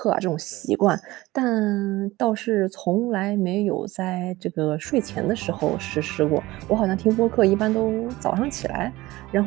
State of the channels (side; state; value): left; quieter; 18.9 dB